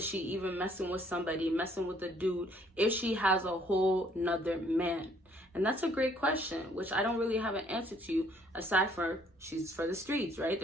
she even messing with somebody, messing with a dude, if she has a whole nother man? And that's a great question, which I don't really have an answer to, aside from she's for the streets, right?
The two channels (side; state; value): both; normal; correlation 0.63